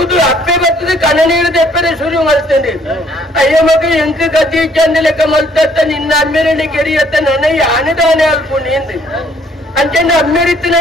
ಅಪ್ಪೆ ಬರ್ತದೆ ಕಣ ನೀರು ತೆಪ್ಪರೆ ಶುರು ಮಲ್ತಂಡಿ ಅಯ್ಯ ಮಗ ಎಂಕ ಗತಿ ಚಂದ ಲೆಕ್ಕ ಮಲ್ತತ್ತ ನಿನ್ನ ಅಮ್ಮೇರನೆ ಕೆರಿಯತ್ತ ನನಗೆ ಆನೆದಾನೆ ಅಲ್ಪ ನಿಂದು ಅಂಚೆಂದು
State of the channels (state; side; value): normal; both; correlation 0.63